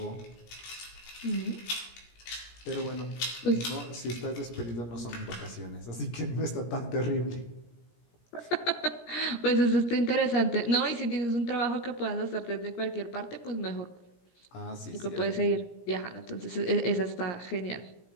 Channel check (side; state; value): right; late; 17 ms